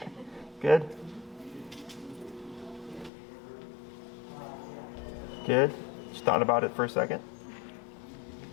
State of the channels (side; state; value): right; drops out; at 3.1 s